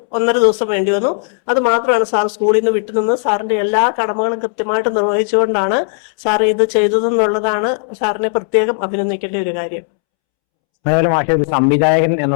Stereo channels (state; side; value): silent; right; 70 dB below the other